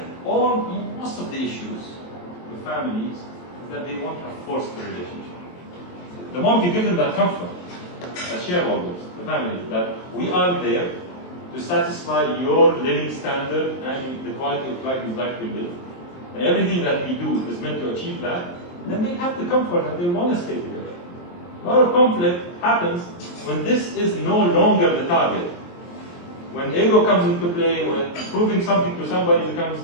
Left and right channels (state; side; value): late; right; 23 ms